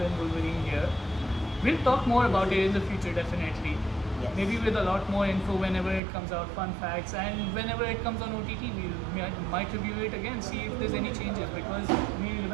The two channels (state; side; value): drops out; left; at 6.0 s